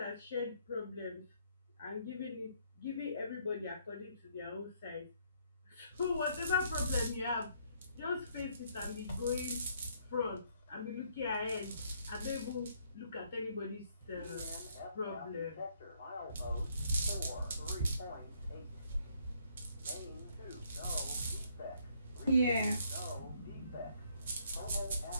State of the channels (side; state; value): both; inverted; correlation -0.68